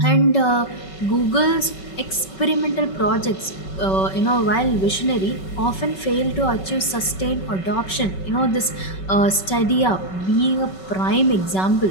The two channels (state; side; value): late; right; 5.3 ms